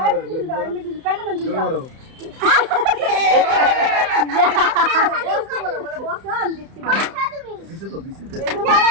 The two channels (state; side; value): late; left; 31 ms